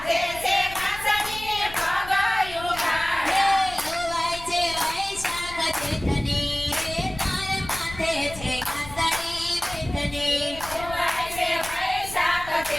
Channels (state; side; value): noise; left; rumble, 15 dB below the sound